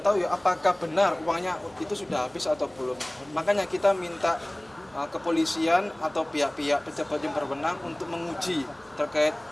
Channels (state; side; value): noise; right; hum, 29 dB below the sound